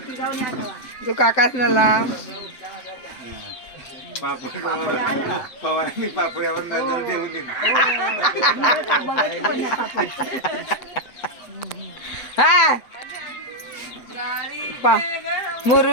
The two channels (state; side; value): late; right; 7.9 ms